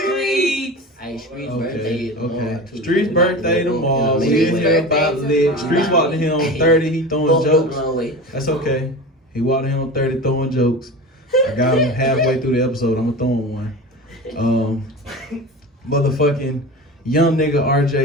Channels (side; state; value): both; normal; correlation 0.31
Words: Hey, Street's birthday tomorrow, too. Street's birthday tomorrow. We in here about lit. Street's walked in here on 30. He throwing jokes. That's okay. He walked in here on 30 throwing jokes. I got him halfway through the episode. I'm gonna throw him one. Motherfucking young nigga